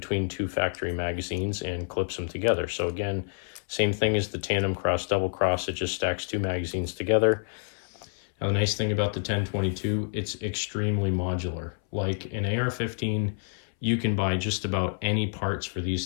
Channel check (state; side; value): silent; right; 59 dB below the other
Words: 2 factory magazines and clips them together. So again, same thing as the tandem cross, double cross, it just stacks 2 magazines together. Now the nice thing about the 1022, it's extremely modular. Like an AR-15, you can buy just about any parts for